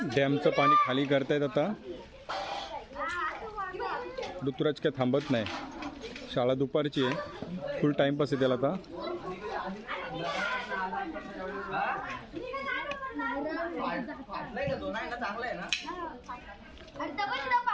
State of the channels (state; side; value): identical; both; correlation 1.00